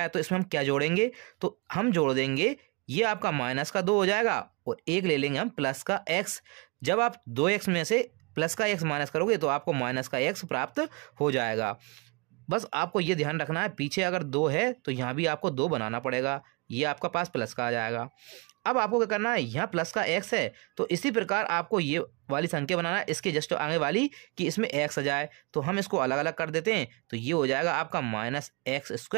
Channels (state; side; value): quieter; left; 30.4 dB